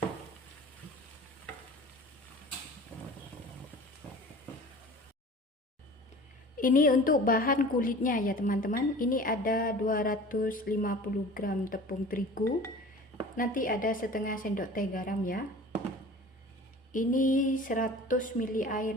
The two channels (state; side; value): normal; both; correlation 0.41